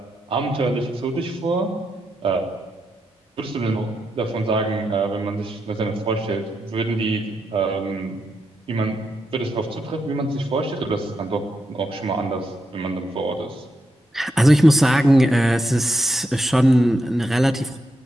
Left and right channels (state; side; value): normal; both; correlation 0.83